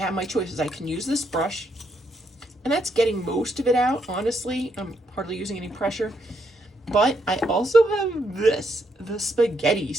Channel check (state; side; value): normal; both; correlation 0.76